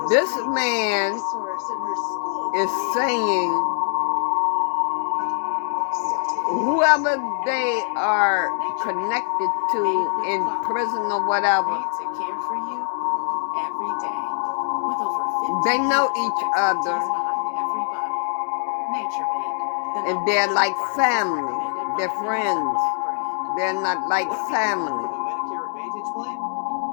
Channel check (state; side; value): silent; right; digital silence